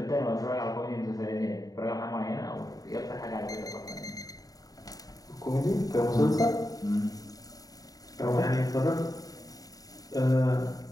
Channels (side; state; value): right; late; 0.18 ms